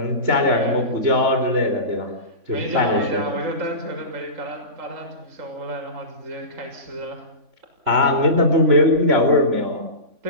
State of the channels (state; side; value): late; left; 3.5 ms